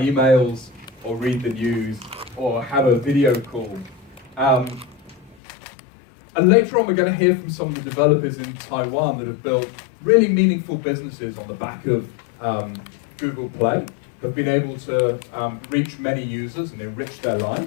emails, or read the news, or have a video call. And later on we're going to hear from some of the developers in Taiwan that have built really meaningful businesses on the back of Google Play, have been able to reach many users and enrich their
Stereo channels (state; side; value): drops out; right; at 5.4 s